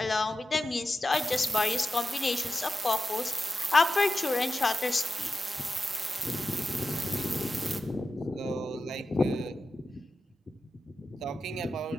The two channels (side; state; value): both; normal; correlation 0.92